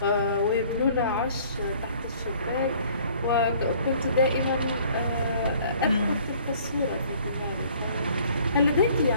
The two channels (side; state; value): both; inverted; correlation -0.55